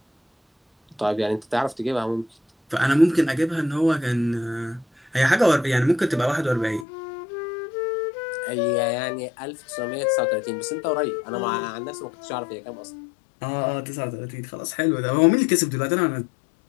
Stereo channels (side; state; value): right; drops out; at 6.9 s